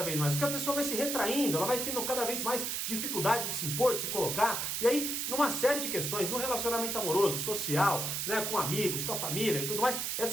vez mais, porque a pessoa vai se retraindo, ela vai tendo cada vez mais dificuldade de se impor, de se colocar, e aí, numa série de questões, no relacionamento amoroso, social, né, com amigos, com a família e tudo mais,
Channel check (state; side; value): noise; right; hiss, 1 dB below the sound